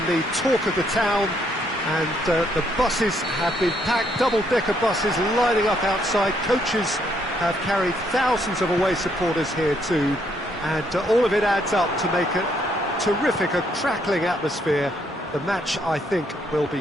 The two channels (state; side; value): normal; both; correlation 0.71